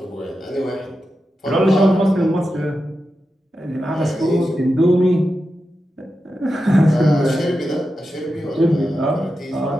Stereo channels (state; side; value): normal; both; correlation 0.90